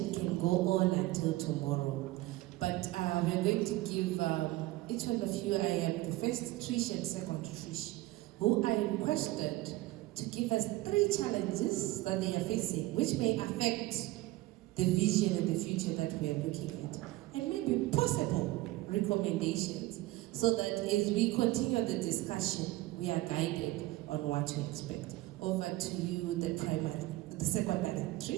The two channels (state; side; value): quieter; left; 18.3 dB